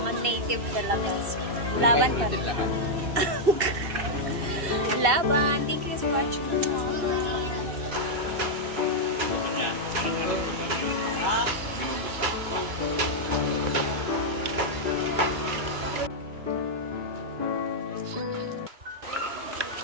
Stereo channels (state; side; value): late; left; 2.7 ms